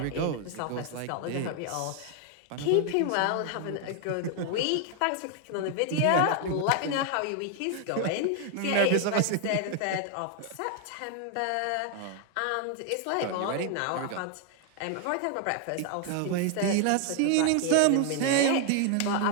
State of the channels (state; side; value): different; both; correlation 0.00